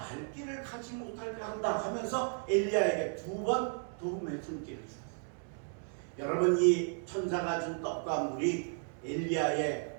길을 가지 못하게 한다 하면서 엘리야에게 두 번 도움의 손길을 주었어요. 여러분, 이 천사가 준 떡과 물이 엘리야의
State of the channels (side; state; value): left; silent; 55 dB below the other